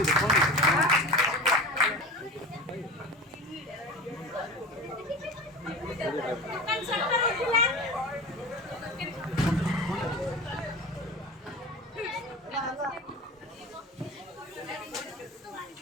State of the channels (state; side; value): normal; both; correlation 0.31